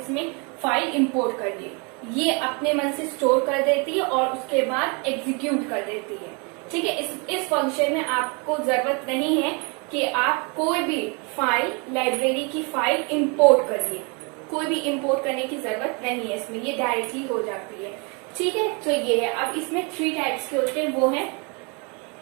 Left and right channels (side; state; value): left; quieter; 32.6 dB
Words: फाइल इम्पोर्ट करिए, ये अपने मन से स्टोर कर देती है और उसके बाद एग्जीक्यूट कर देती है, ठीक है। इस फंक्शन में आपको जरूरत नहीं है कि आप कोई भी फाइल लाइब्रेरी की फाइल इम्पोर्ट करिए, कोई भी इम्पोर्ट करने की जरूरत नहीं है इसमें, ये डायरेक्टली हो जाती है, ठीक है। तो ये है। अब इसमें 3 टाइप्स के होते हैं, वो है